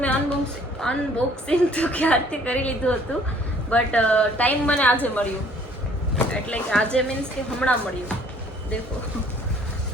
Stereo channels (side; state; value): both; normal; correlation 0.57